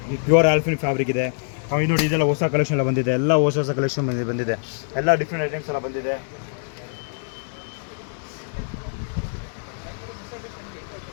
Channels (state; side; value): silent; right; digital silence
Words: ಪ್ಯೂರ್ ಆಲ್ಫಿನ್ ಫ್ಯಾಬ್ರಿಕ್ ಇದೆ. ಆಮೇಲೆ ನೋಡಿ, ಇದೆಲ್ಲ ಹೊಸ ಕಲೆಕ್ಷನ್ ಎಲ್ಲ ಬಂದಿದೆ. ಎಲ್ಲ ಹೊಸ ಕಲೆಕ್ಷನ್ ಬಂದಿದೆ. ಎಲ್ಲ ಡಿಫ್ರೆಂಟ್ ಐಟಮ್ಸ್ ಎಲ್ಲ ಬಂದಿದೆ.